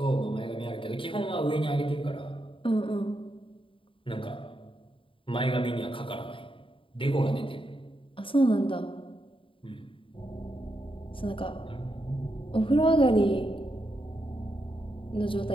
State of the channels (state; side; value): late; right; 0.25 ms